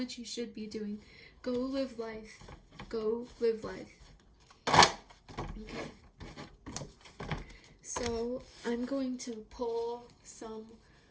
you should be doing. Go live life. Go live life. Okay. So I'm going to pull some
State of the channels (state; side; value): identical; both; correlation 1.00